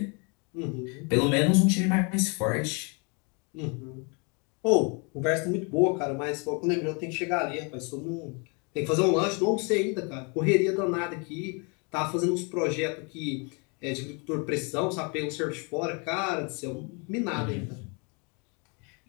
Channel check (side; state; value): right; quieter; 33.5 dB